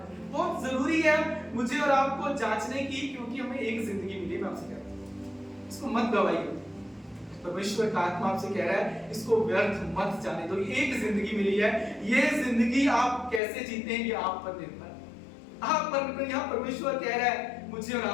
है। बहुत जरूरी है मुझे और आपको जांचने की, क्योंकि हमें एक जिंदगी मिली है। मैं आपसे कह रहा हूँ इसको मत गवाइए। परमेश्वर का आत्मा आपसे कह रहा है इसको व्यर्थ मत जाने दो। एक जिंदगी मिली है, ये जिंदगी आप कैसे जीते हैं ये आप पर निर्भर है। आप पर यहाँ परमेश्वर कह रहा है मुझे और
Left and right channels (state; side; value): drops out; right; at 13.4 s